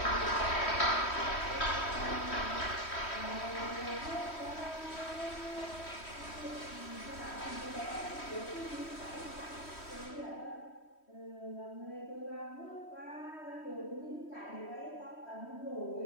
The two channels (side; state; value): right; late; 3.1 ms